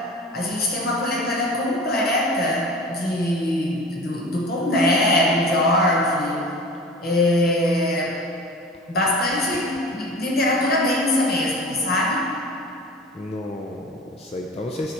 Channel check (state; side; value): normal; both; correlation 0.37